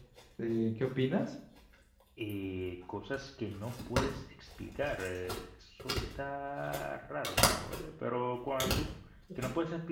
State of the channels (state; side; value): identical; both; correlation 1.00